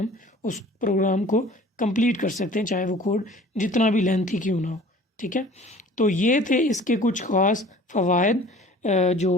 उस प्रोग्राम को कंप्लीट कर सकते हैं, चाहे वो कोड जितना भी लेंथी क्यों ना हो, ठीक है। तो ये थे इसके कुछ ख़ास फ़वाइद जो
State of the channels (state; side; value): normal; both; correlation 0.47